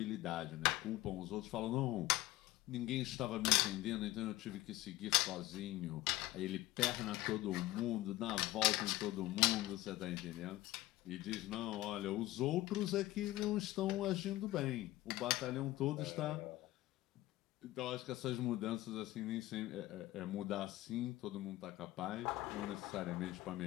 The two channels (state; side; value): quieter; right; 17.1 dB